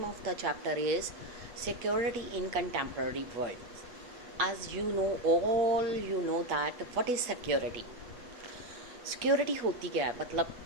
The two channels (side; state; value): left; late; 8.4 ms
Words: of the chapter is Security in Contemporary World. As you know, all you know that what is security. Security होती क्या है, मतलब